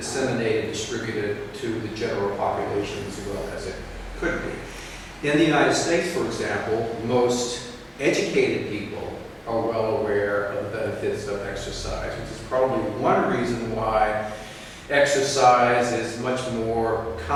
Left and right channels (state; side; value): identical; both; correlation 1.00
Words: distributed to the general population as well as it could be. In the United States, for example, most educated people are well aware of the benefits of exercise, which is probably one reason why exercise is much more